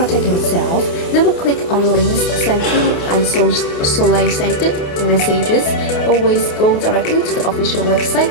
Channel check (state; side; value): late; right; 28 ms